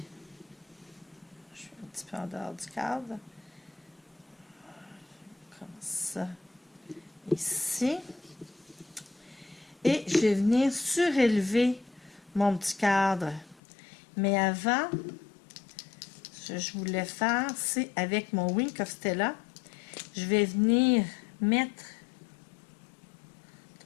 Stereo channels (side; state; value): right; drops out; at 13.6 s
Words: Je suis un petit peu en dehors du cadre. Comme ça. Ici. Et je vais venir surélever mon petit cadre. Mais avant, ce que je voulais faire, c'est avec mon Wink of Stella, je vais venir mettre